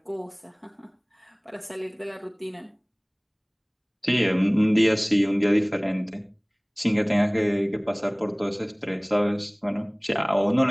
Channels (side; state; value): both; identical; correlation 1.00